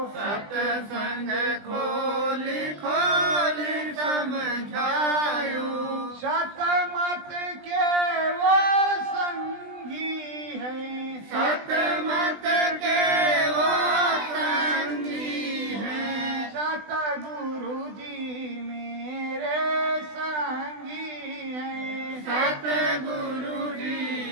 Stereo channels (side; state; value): left; late; 20 ms